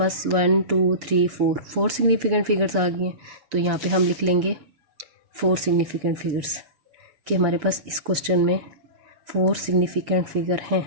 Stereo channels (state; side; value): late; left; 6.9 ms